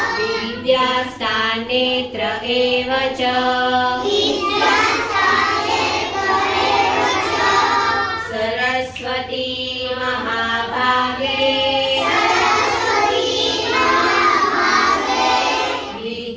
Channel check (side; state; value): both; identical; correlation 1.00